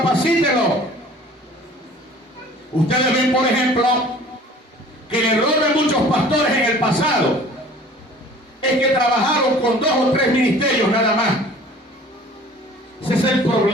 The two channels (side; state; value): both; normal; correlation 0.48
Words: Ustedes ven, por ejemplo, que el error de muchos pastores en el pasado es que trabajaron con 2 o 3 ministerios nada más. Ese es el